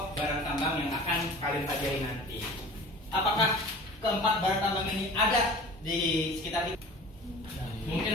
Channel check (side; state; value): both; normal; correlation 0.41